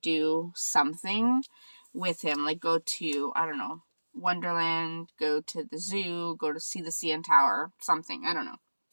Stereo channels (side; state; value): both; inverted; correlation -1.00